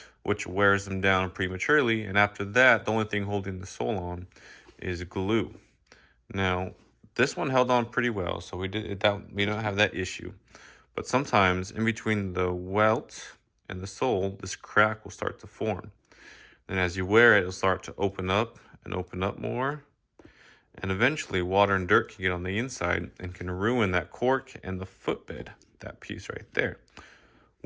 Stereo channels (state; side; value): identical; both; correlation 1.00